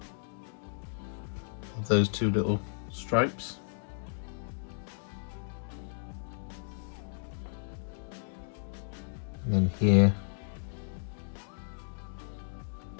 Of those two little stripes. And then here,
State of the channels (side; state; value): right; silent; digital silence